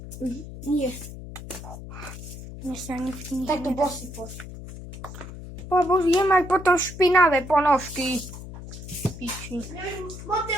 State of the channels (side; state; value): left; noise; hum, 12 dB below the sound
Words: Nie. Nie sa nie Tak do bosy poszło. Pobožím aj potom špinavé ponožky. Piči. Moty